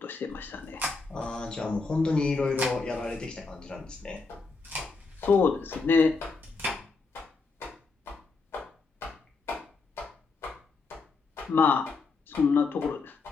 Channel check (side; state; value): right; quieter; 4.2 dB